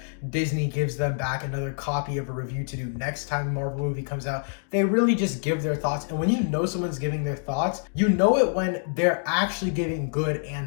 Disney gives them back another copy of a review to do next time a Marvel movie comes out. They really just give their thoughts, and when you know someone's giving their thoughts, you know it when they're actually giving good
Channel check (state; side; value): silent; right; digital silence